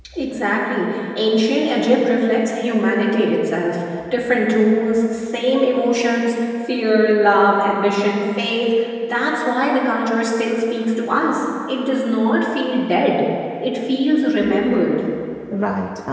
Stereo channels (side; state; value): both; identical; correlation 1.00